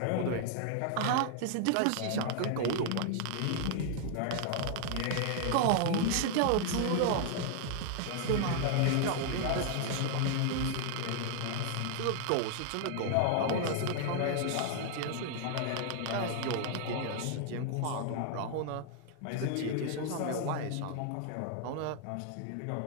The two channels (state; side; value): different; both; correlation 0.00